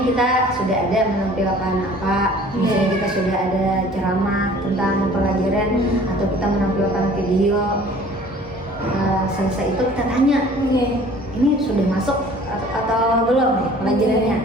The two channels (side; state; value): both; normal; correlation 0.50